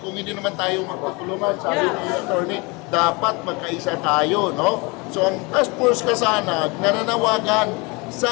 hindi naman tayo magtutulungan? Sabi ni attorney, dapat magkaisa tayo, no? So ang Task Force Kasanag nananawagan sa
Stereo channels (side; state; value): right; quieter; 27.6 dB